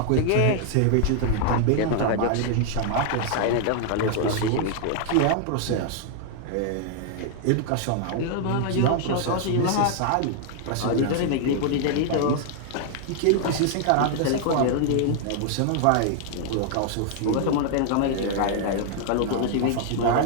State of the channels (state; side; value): different; both; correlation 0.00